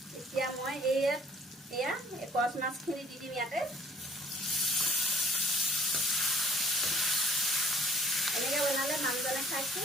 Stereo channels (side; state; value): both; normal; correlation 0.56